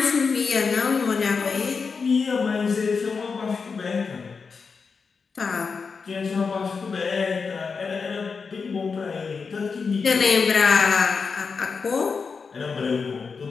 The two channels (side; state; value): right; quieter; 5.2 dB